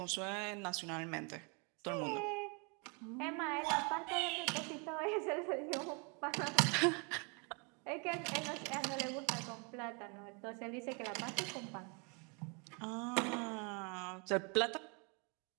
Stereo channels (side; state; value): left; quieter; 34.0 dB